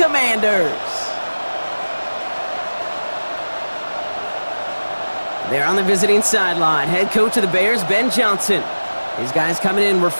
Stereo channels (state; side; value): inverted; both; correlation -1.00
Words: They're on the visiting sideline. Head coach of the Bears, Ben Johnson. His guys coming in